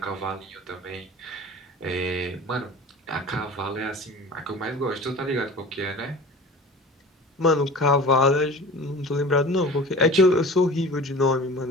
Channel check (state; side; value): normal; both; correlation 0.39